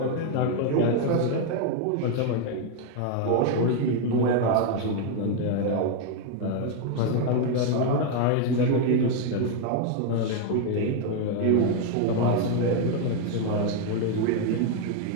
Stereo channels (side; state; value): both; different; correlation 0.01